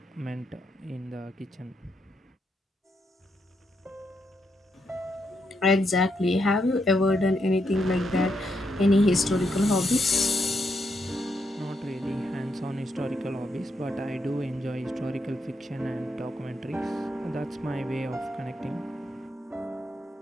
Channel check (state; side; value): normal; both; correlation 0.80